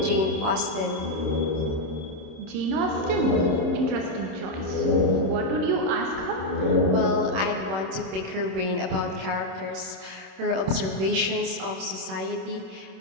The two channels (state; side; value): late; left; 26 ms